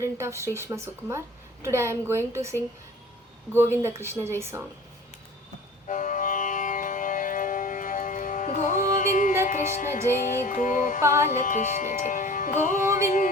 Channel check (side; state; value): both; normal; correlation 0.44